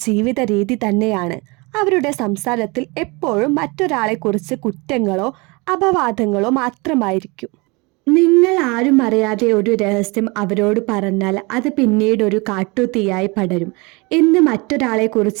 രീതി തന്നെയാണ്. അവരുടെ സംസാരത്തിൽ എപ്പോഴും മറ്റൊരാളെ കുറിച്ച് കുറ്റങ്ങളോ അപവാദങ്ങളോ മാത്രമായിരിക്കും. നിങ്ങൾ ആരും അറിയാതെ ഒരു രഹസ്യം അവരോട് പറഞ്ഞാൽ അത് പിന്നീട് ഒരു കാട്ടുതീയായി പടരും. ഇന്ന് മറ്റൊരാളെ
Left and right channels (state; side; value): quieter; left; 27.0 dB